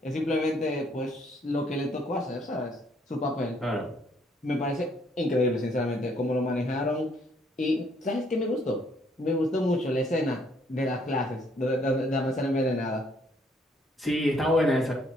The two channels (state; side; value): normal; both; correlation 0.67